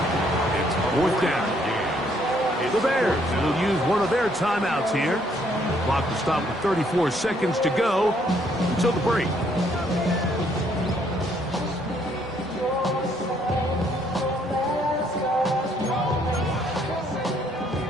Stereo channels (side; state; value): both; normal; correlation 0.68